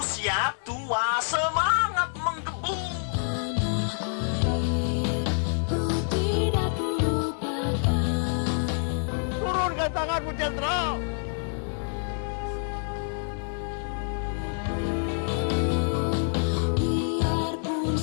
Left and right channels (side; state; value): right; silent; 55 dB below the other